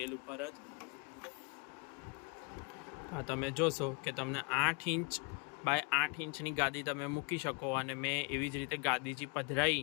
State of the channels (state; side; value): quieter; right; 32.0 dB